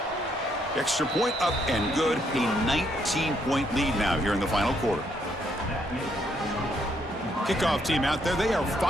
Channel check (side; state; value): both; normal; correlation 0.72